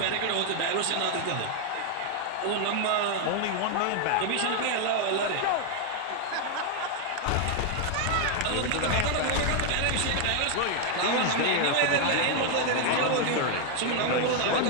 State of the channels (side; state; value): both; different; correlation 0.00